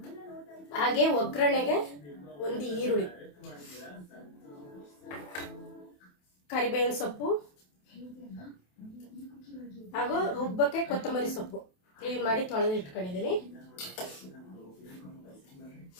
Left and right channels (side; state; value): right; late; 28 ms